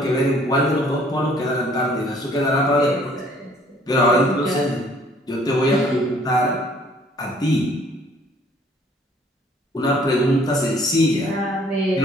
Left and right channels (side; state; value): both; normal; correlation 0.59